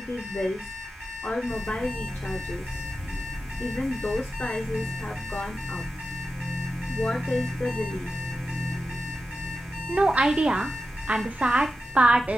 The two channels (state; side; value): normal; both; correlation 0.91